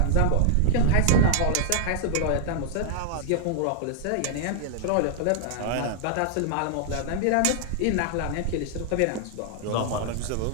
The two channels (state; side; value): different; both; correlation 0.00